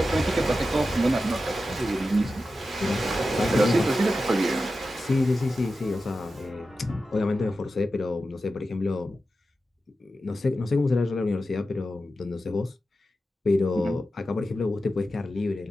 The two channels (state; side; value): normal; both; correlation 0.92